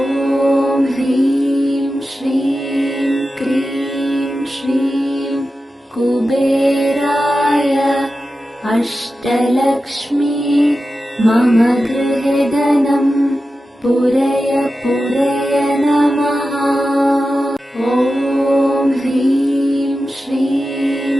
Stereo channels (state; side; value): normal; both; correlation 0.93